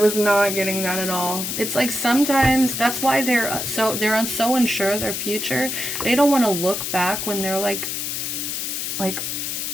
not getting that at all. It's like sometimes that's why they're so unsure of their future. They don't want to look back when they're like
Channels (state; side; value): noise; left; hiss, 3 dB below the sound